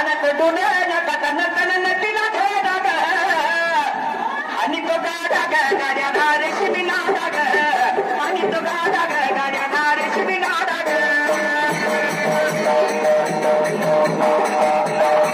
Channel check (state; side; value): identical; both; correlation 1.00